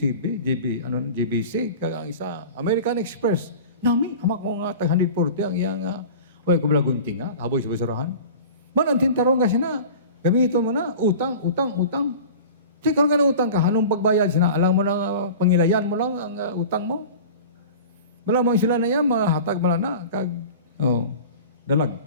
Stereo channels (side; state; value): both; inverted; correlation -0.37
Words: ang isa, American Express. Nami, hamak ko nga, tag 140, ang iyang, wala ko balagunting nga, haboy sa basurahan. Manantin tarong kasi na, gamitin mo na, utang. Kasi kung ka na utang ka, anong pagbayad sina? Alam mo na, pangilayan mo lang ang utang mo. Malamang sila na yan, mga hatag mo na,